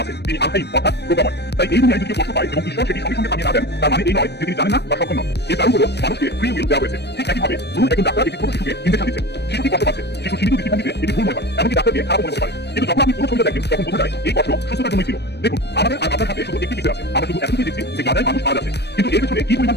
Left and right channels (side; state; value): right; late; 0.49 ms